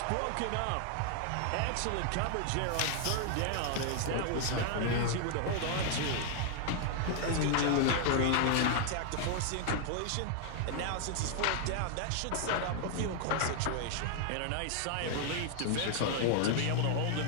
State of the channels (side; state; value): both; different; correlation 0.00